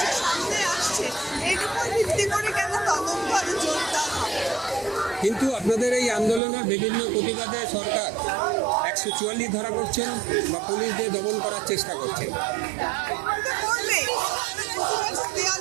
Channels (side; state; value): left; drops out; at 6.4 s